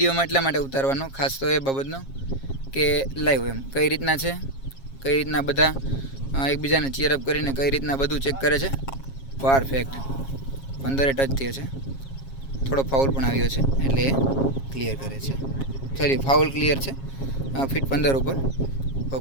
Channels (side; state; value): right; late; 7.4 ms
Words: એટલા માટે ઉતારવાનો ખાસ તો એ બાબતનો કે લાઈવ એમ કઈ રીતના છે, કઈ રીતના બધા એકબીજાને ચીયરઅપ કરીને કઈ રીતના બધું ચેક કરે છે. પરફેક્ટ 15 ટચ થયો છે. થોડો ફાઉલ પણ આવ્યો છે એટલે એ ક્લિયર કરે છે. સોરી ફાઉલ ક્લિયર છે. ફીટ 15 ઉપર